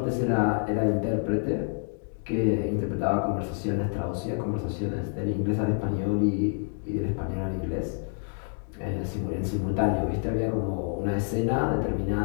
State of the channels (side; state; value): right; silent; 58 dB below the other